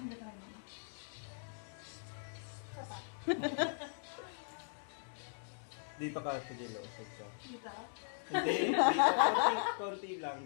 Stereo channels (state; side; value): silent; right; digital silence